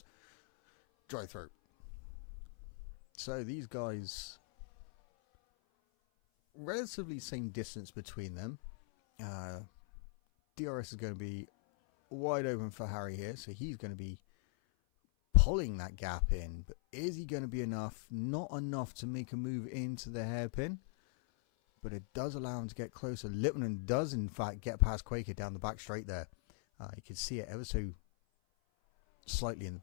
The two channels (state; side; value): silent; right; 51 dB below the other